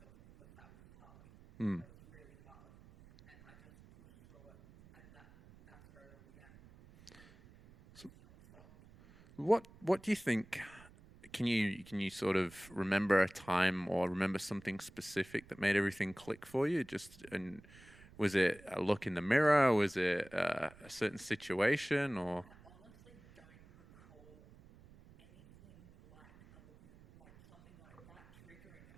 because that was hard. That was really hard. And I just pushed through it. And that's where it all began. And I just haven't stopped. What do you think? Can you sort of remember a time or remember something specific that made everything click for you? And was it a look in the mirror? Was it a certain situation? Or I honestly don't recall anything like a look in the, like something like that triggering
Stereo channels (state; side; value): noise; right; rumble, 23 dB below the sound